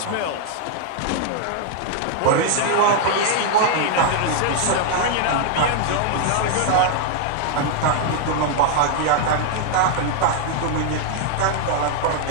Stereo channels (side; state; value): both; different; correlation 0.00